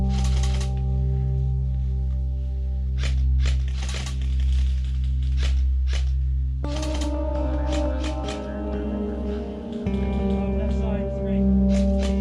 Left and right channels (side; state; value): both; identical; correlation 1.00